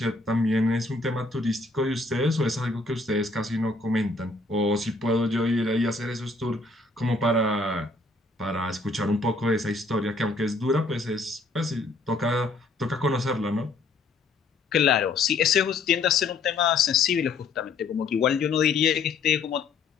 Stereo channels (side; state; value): right; quieter; 3.6 dB